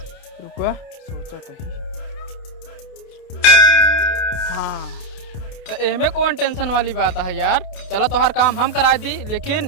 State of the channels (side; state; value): right; late; 29 ms